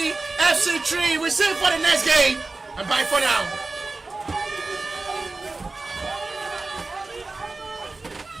FC 3. We see you for the next game. And bye for now.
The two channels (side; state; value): left; quieter; 3.5 dB